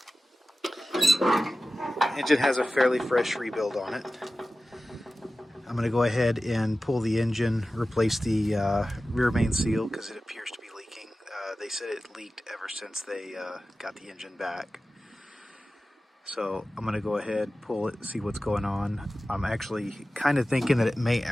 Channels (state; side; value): normal; both; correlation 0.95